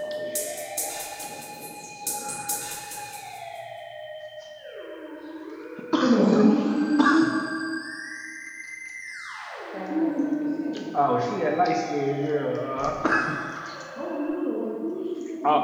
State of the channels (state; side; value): identical; both; correlation 1.00